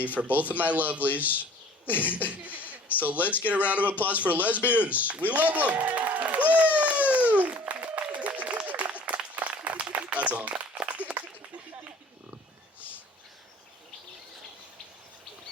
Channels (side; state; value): both; normal; correlation 0.49